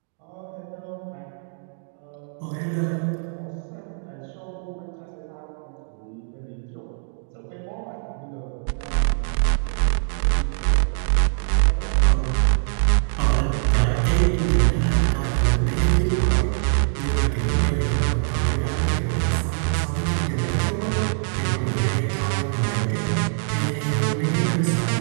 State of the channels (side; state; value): left; silent; digital silence